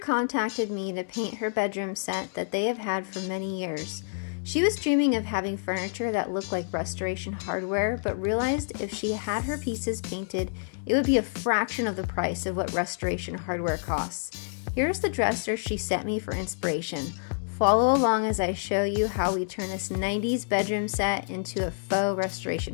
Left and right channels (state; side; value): silent; right; digital silence